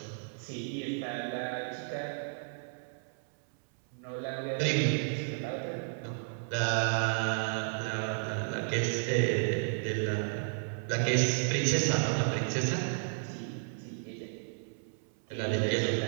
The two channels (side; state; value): left; silent; 56 dB below the other